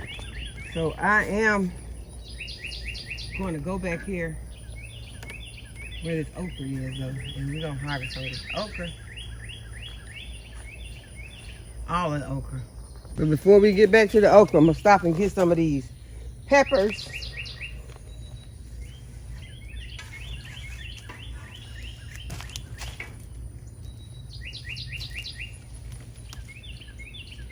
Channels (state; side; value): identical; both; correlation 1.00